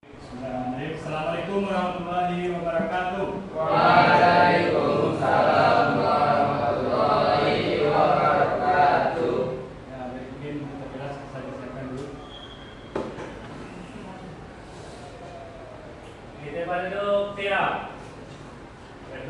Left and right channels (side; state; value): both; identical; correlation 1.00